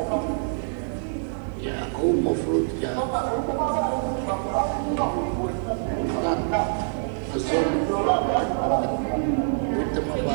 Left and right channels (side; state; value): left; silent; digital silence